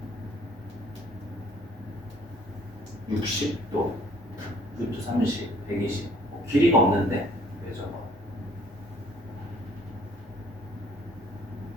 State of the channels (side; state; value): both; normal; correlation 0.58